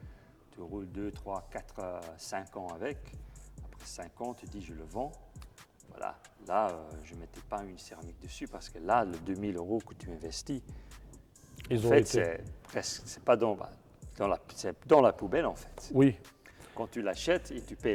tu roules 2, 3, 4, 5 ans avec. Après 5 ans, tu dis je le vends. Voilà. Là, je ne mettais pas une céramique dessus parce que là, le 2000 € que tu investis, en fait, c'est pas c'est dans la poubelle en fait. Oui, Quand tu l'achètes et tu payes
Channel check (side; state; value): both; identical; correlation 1.00